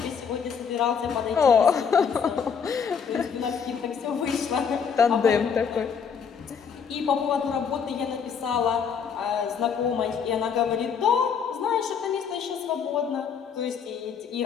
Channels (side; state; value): right; quieter; 6.6 dB